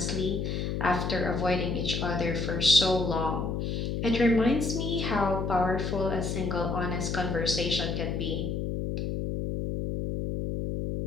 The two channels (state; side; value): noise; left; hum, 2 dB below the sound